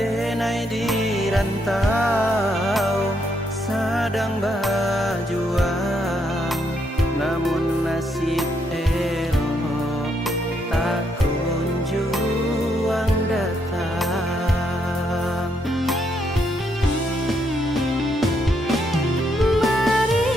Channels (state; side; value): normal; both; correlation 0.76